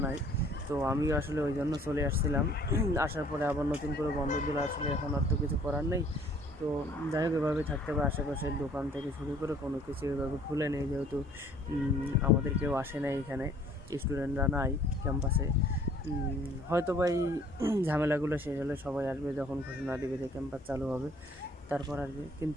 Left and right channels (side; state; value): both; normal; correlation 0.56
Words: নাই। তো আমিও আসলে ওই জন্য চলে আসছিলাম। আসার পরে আবার নতুন করে বন্ধ দিলে আসলে এখন আর তো কিছু করার নেই। তো যাই হোক, এভাবে থাকতে হবে। আশেপাশের দোকান থেকে শুরু করে কোনো কিছু এভাবে খুলে নেই, যেহেতু আমাদের কেউ আসে না এখানে, স্টুডেন্টরা নাই ক্যাম্পাসে। হয়তো বা এই ঝামেলাগুলো শেষ হলে সবাই আসবে, যখন ঘোষণা দেবে যে ক্যাম্পাস চালু হবে তারপর আসবে।